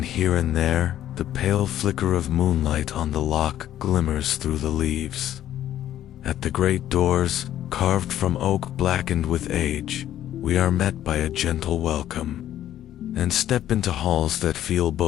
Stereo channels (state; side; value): quieter; right; 11.9 dB